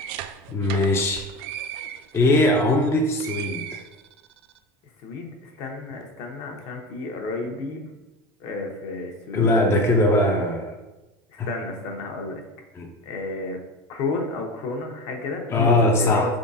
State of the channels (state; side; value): normal; both; correlation 0.27